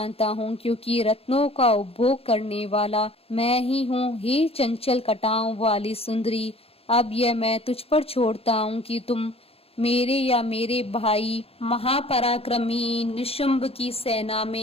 हूँ क्योंकि रत्नों का उपभोग करने वाला मैं ही हूँ। हे चंचल कटाओं वाली सुंदरी, अब यह मैं तुझ पर छोड़ता हूँ कि तुम मेरे या मेरे भाई महापराक्रमी निशुंभ की सेना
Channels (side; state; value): right; late; 0.28 ms